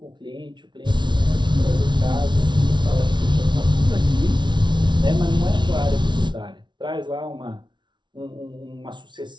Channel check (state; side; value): late; left; 0.22 ms